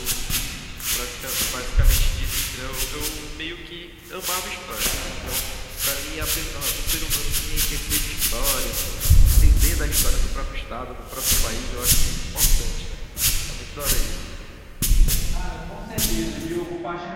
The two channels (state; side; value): identical; both; correlation 1.00